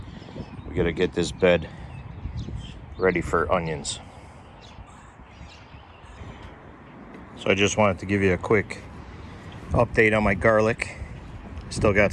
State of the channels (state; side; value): identical; both; correlation 1.00